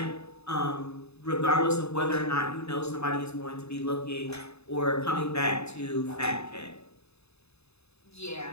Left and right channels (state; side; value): late; right; 0.79 ms